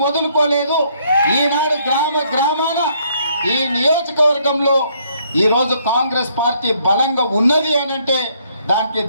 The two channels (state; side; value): inverted; both; correlation -0.68